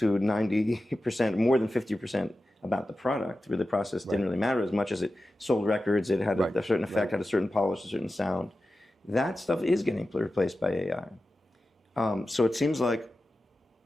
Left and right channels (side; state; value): both; normal; correlation 0.93